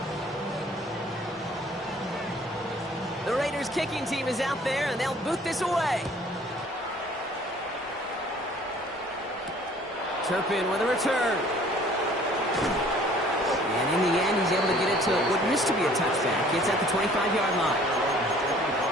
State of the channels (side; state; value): both; normal; correlation 0.54